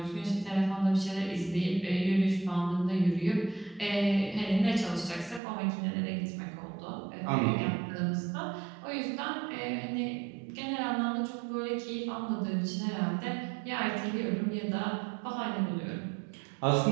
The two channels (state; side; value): drops out; left; at 5.4 s